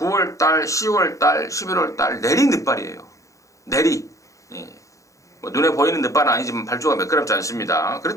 10월달, 11월달 내리 늦발이에요. 내리. 예. 뭐 눈에 보이는 늦발은 아니지만 발주가 매끄럽지 않습니다.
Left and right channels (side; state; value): right; late; 0.15 ms